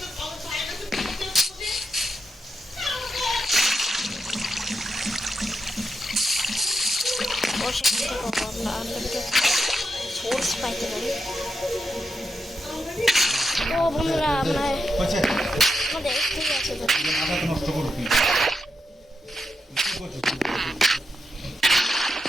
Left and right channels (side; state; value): both; normal; correlation 0.85